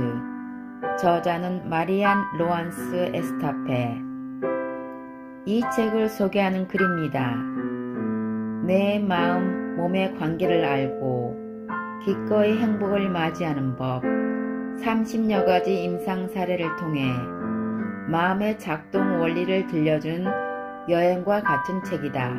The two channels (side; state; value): both; identical; correlation 1.00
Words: 저자는 마리안 로안스 에스타페. 이 책을 소개하는 글입니다. 내 마음, 몸의 관계를 알고 기꺼이 행복을 맞이하는 법, 30여 가지 임상 사례를 통해 마음의 작동 원리를 들려준 여행과 같은 책이다.